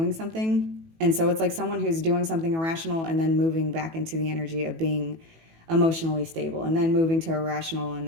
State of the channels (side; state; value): left; late; 18 ms